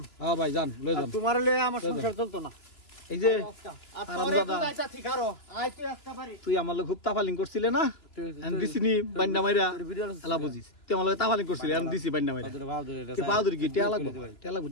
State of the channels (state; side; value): late; right; 3.0 ms